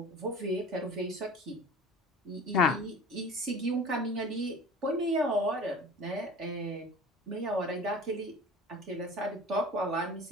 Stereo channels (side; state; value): both; normal; correlation 0.40